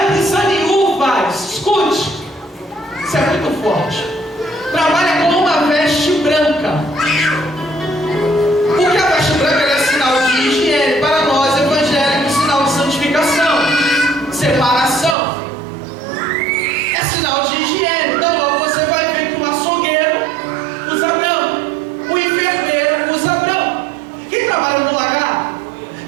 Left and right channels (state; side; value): drops out; left; at 15.2 s